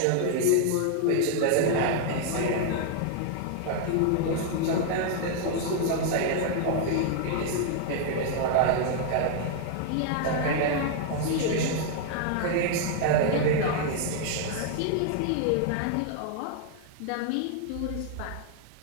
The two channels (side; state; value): both; different; correlation 0.00